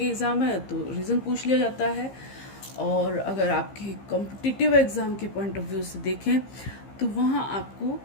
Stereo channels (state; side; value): late; right; 15 ms